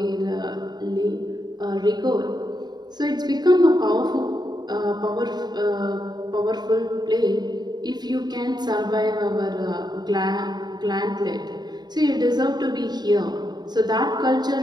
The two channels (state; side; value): late; left; 0.20 ms